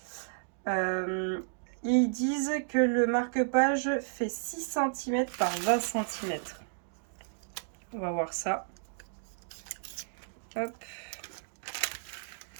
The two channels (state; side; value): silent; left; digital silence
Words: Ils disent que le marque-page fait 6 cm par 20 cm. On va voir ça. Hop.